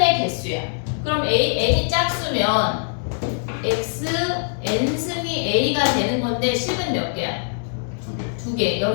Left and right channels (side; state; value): right; silent; digital silence